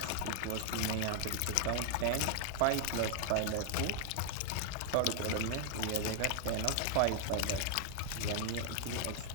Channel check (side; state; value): both; different; correlation 0.00